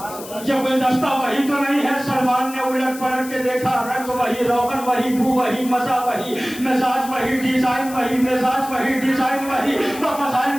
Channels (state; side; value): noise; left; hiss, 14 dB below the sound